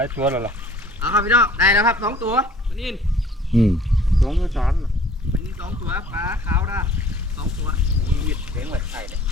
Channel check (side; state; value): both; normal; correlation 0.52